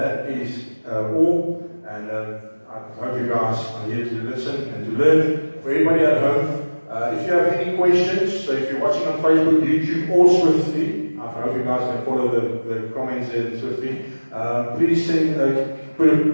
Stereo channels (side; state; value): both; inverted; correlation -1.00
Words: is all. And I hope you guys are here to listen and to learn. For everybody at home, if you have any questions, so if you're watching on Facebook, YouTube, or Swiftly, I hope you guys can follow the comments there Swiftly. Please send,